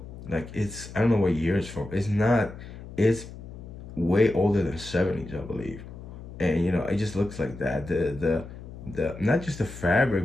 Like I don't know what year it's from. It's not. It's way older than '70s, I believe. And it just looks like that. The not just the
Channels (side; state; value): left; noise; hum, 14 dB below the sound